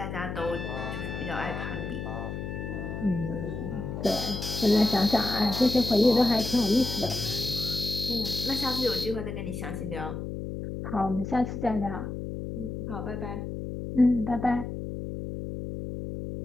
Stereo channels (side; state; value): left; noise; hum, 6 dB below the sound